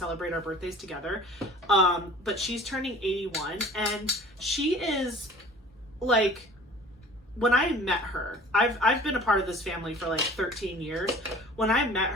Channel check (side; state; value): both; normal; correlation 0.46